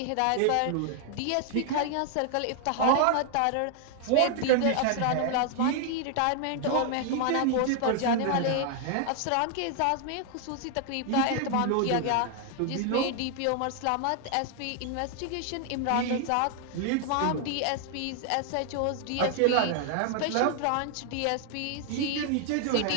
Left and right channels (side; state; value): both; different; correlation 0.00